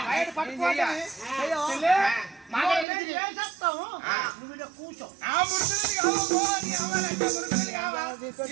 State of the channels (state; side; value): drops out; left; at 2.9 s